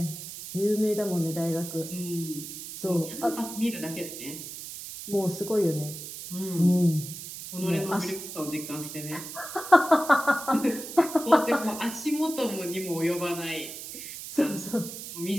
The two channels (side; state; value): right; noise; hiss, 10 dB below the sound